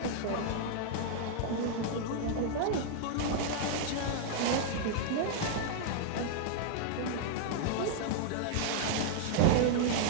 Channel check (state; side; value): different; both; correlation -0.01